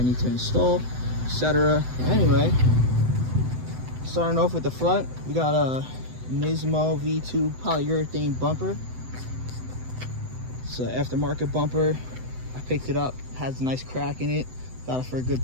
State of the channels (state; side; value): late; left; 7.9 ms